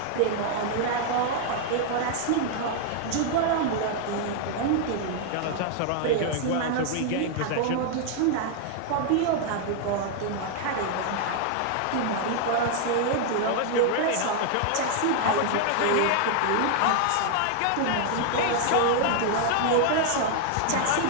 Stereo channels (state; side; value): different; both; correlation 0.00